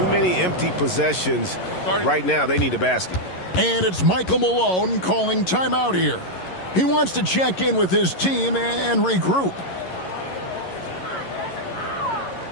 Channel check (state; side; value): late; right; 11 ms